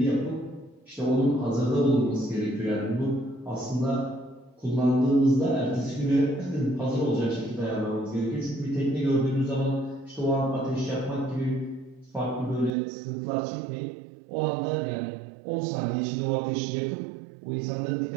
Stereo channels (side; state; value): left; drops out; at 12.8 s